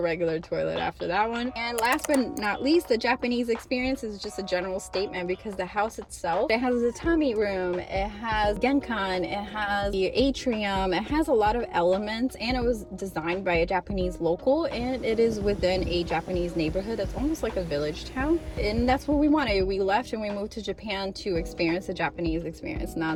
regular toilet after that one. And last but not least, the Japanese experience is just a general statement because the house itself, it has a tatami room, it has genkan, it has the atrium, it has a lot of elements, and it was designed by a Japanese local, and it is within a Japanese neighborhood that's owned almost like a village town. And that's what we wanted. We left and we moved to Japan to experience the Japanese experience,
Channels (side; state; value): both; identical; correlation 1.00